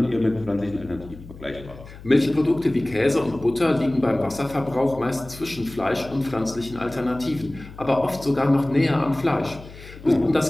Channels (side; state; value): left; noise; hum, 17 dB below the sound